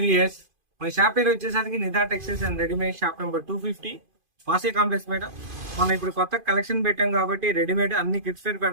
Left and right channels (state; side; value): late; left; 2.5 ms